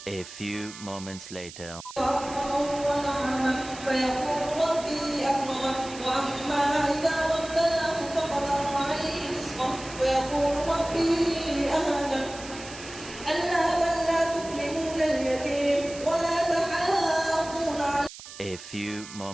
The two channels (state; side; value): noise; right; hiss, 14 dB below the sound